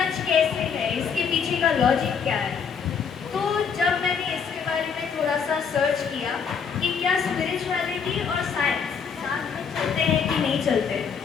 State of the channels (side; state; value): right; quieter; 6.5 dB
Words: कैसे है, इसके पीछे का लॉजिक क्या है। तो जब मैंने इसके बारे में थोड़ा सा सर्च किया कि क्या स्पिरिचुअलिटी और साइंस साथ में चलते हैं कि नहीं चलते,